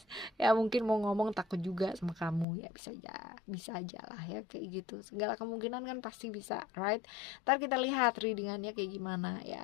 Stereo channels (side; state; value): right; drops out; at 2.5 s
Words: ya mungkin mau ngomong takut juga sama kamu ya, bisa aja lah ya kayak gitu, segala kemungkinan kan pasti bisa, right? Ntar kita lihat readingannya kayak gimana